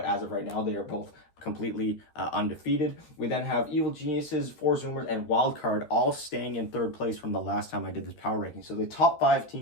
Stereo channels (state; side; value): late; right; 13 ms